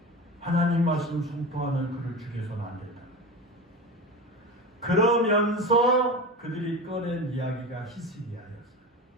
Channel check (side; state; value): both; normal; correlation 0.27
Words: 하나님 말씀 선포하는 그를 죽여서는 안 된다. 그러면서 그들이 꺼낸 이야기가 히스기야였어요.